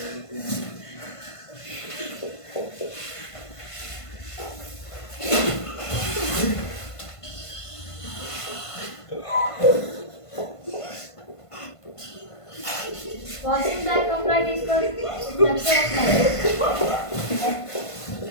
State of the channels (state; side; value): late; right; 1.5 ms